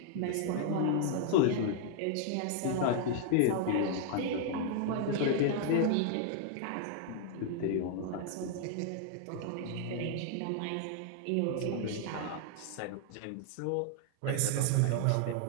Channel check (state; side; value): different; both; correlation 0.00